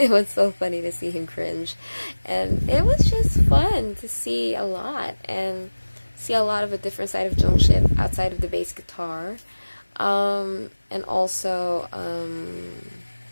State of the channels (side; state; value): both; inverted; correlation -1.00